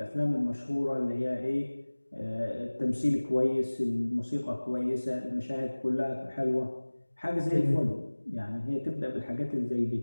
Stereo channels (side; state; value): both; inverted; correlation -1.00